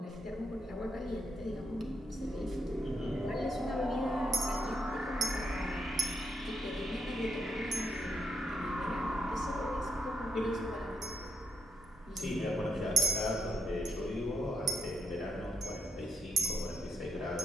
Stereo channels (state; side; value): normal; both; correlation 0.80